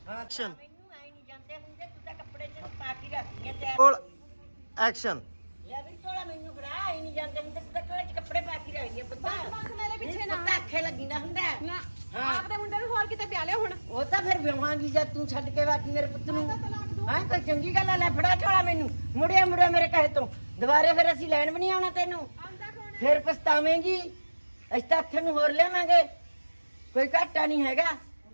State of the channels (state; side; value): inverted; both; correlation -1.00